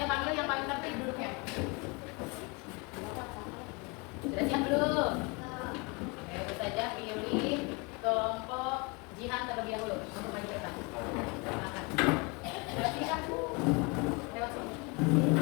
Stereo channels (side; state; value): right; quieter; 29.2 dB